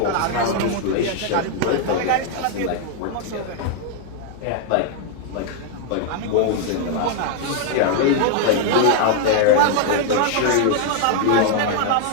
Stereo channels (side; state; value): both; different; correlation 0.00